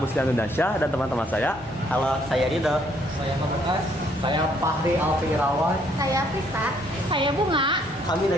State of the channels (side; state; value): both; normal; correlation 0.67